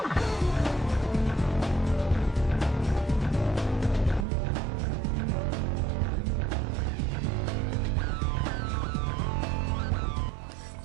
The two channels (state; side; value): drops out; left; at 4.2 s